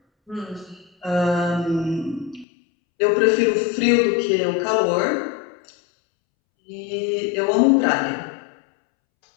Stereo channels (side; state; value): right; drops out; at 2.5 s